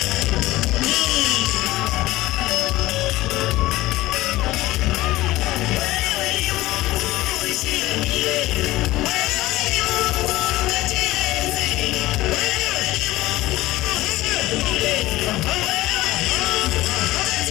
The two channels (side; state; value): right; quieter; 17.7 dB